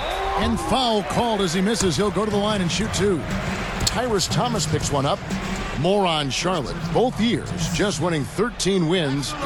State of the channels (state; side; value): identical; both; correlation 1.00